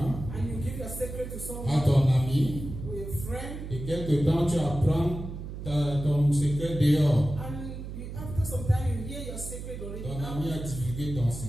and you give your secret to à someone ton ami, or your friend, et quelque temps tu apprends ton secret dehors. and after some time you hear your secret already Ton ami a out. divulgué ton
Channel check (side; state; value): right; noise; hum, 9 dB below the sound